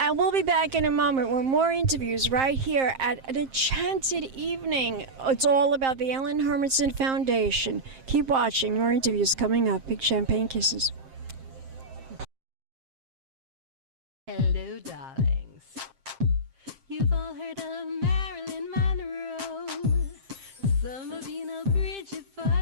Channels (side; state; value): left; late; 7.6 ms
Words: we'll be back in a moment with more interviews right here at an enchanted evening. It's all about the Ellenhermanson Foundation. Keep watching. More interviews coming up. Big champagne kisses. Hello, darlings. You've all heard of Marilyn Monroe. Some of you know Bridget